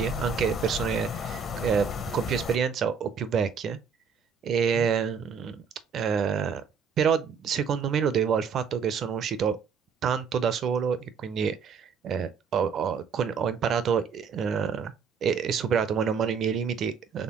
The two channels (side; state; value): left; quieter; 6.1 dB